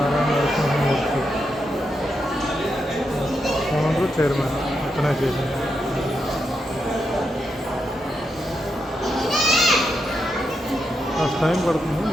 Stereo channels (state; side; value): normal; both; correlation 0.84